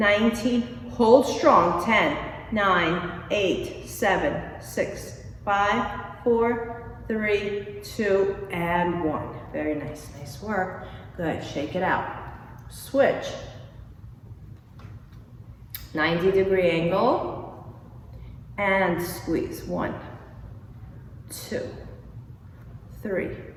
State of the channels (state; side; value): identical; both; correlation 1.00